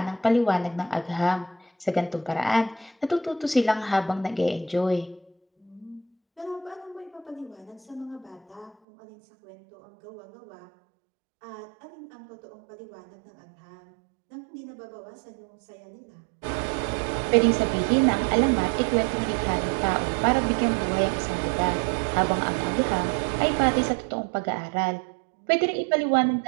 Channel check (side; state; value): left; drops out; at 8.8 s